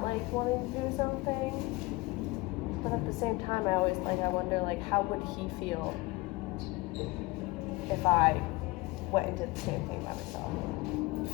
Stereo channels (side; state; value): right; quieter; 22.9 dB